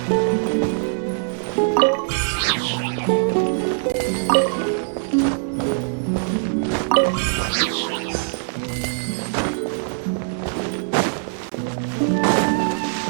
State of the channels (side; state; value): left; silent; digital silence